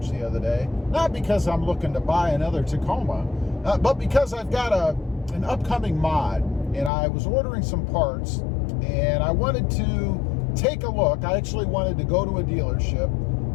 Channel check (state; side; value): drops out; right; at 6.9 s